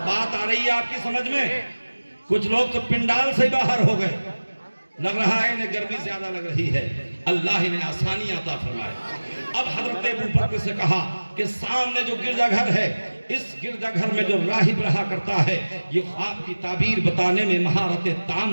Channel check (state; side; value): inverted; both; correlation -1.00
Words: بات آ رہی ہے آپ کی سمجھ میں؟ کچھ لوگ تو پنڈال سے باہر ہو گئے، لگ رہا ہے انہیں گرمی زیادہ لگ رہی ہے، اللہ انہیں آسانی عطا فرمائے۔ اب حضرت ابو بکر سے کہا کہ سامنے جو گرجا گھر ہے اس گرجا گھر میں جو راہب رہا کرتا ہے یہ خواب کی تعبیر بتانے میں مہارت